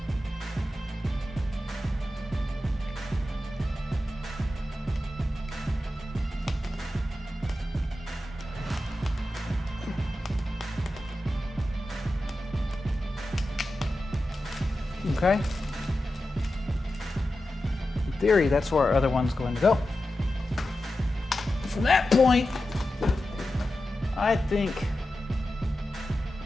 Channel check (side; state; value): both; normal; correlation 0.92